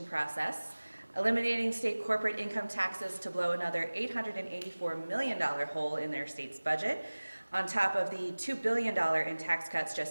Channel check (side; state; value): both; inverted; correlation -1.00